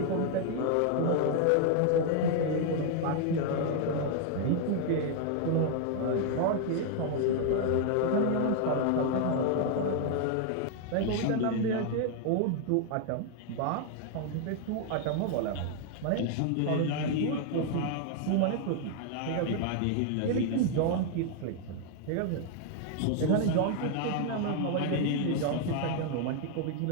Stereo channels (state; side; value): different; both; correlation 0.00